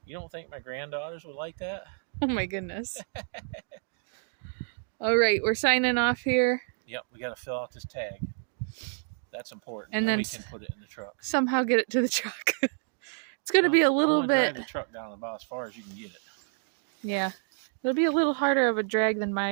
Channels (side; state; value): left; silent; 58 dB below the other